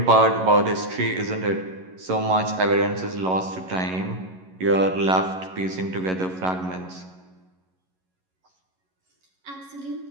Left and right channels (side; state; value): left; late; 11 ms